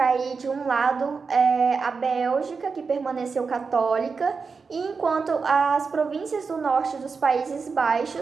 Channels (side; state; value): left; quieter; 5.0 dB